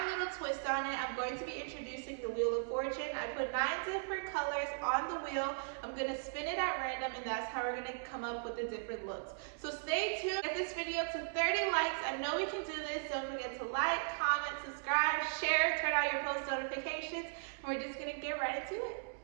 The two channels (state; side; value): silent; left; digital silence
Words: little twist on it. I'm going to be introducing the Wheel of Fortune. I put 9 different colors on the wheel. I'm going to spin it at random, and that's how we're going to come up with the different looks. So stay tuned. Get this video to 30 likes. I know we can do this. Don't forget to like, comment, subscribe, share, turn on your post notifications, and we're just going to get right into it.